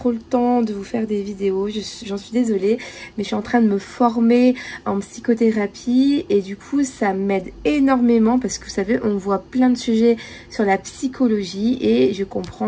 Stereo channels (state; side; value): identical; both; correlation 1.00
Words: le temps de vous faire des vidéos, j'en suis désolée, mais je suis en train de me former en psychothérapie et du coup ça m'aide énormément parce que vous savez, on voit plein de sujets sur la psychologie et je